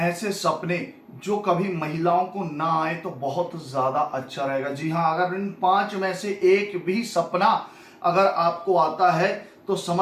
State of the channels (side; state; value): both; identical; correlation 1.00